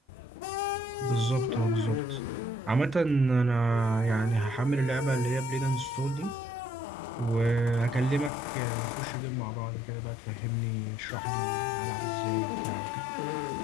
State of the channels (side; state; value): right; drops out; at 8.3 s